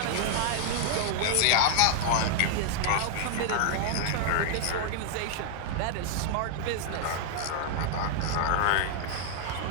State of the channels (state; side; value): different; both; correlation 0.00